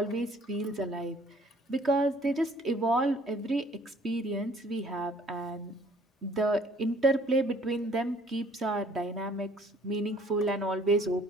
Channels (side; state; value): both; normal; correlation 0.58